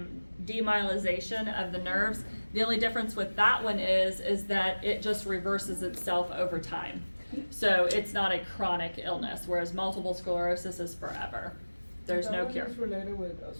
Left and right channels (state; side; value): inverted; both; correlation -1.00